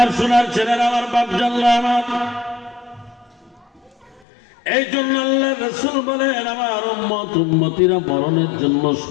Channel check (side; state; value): right; drops out; at 4.2 s